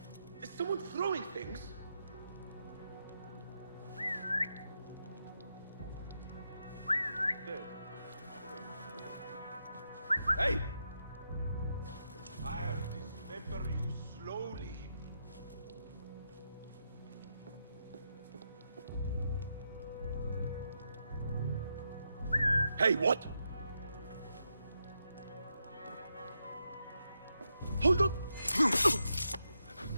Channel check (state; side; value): inverted; both; correlation -0.83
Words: Is someone throwing things? Hey! I'll dismember you slowly. Hey, what? Hold on!